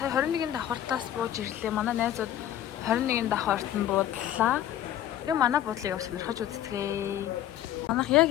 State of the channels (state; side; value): quieter; right; 11.8 dB